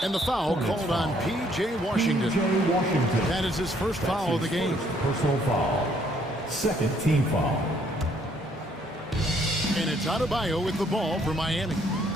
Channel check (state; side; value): normal; both; correlation 0.66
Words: And the foul called on P.J. Washington. That is his first foul of the game. Personal foul. Second team foul. And it's Adebayo with the ball for Miami.